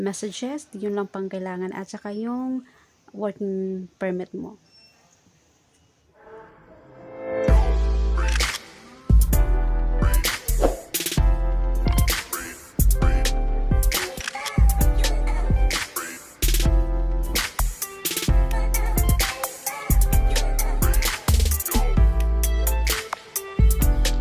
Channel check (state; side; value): identical; both; correlation 1.00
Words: yun lang pang kailangan at saka yung working permit mo.